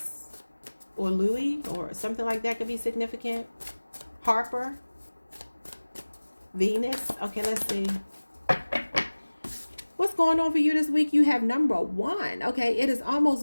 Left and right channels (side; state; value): both; inverted; correlation -1.00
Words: or Louis or something like that could be significant. Harper, Venus. Okay, let's see. What's going on for you this week? You have number 1. Okay, it is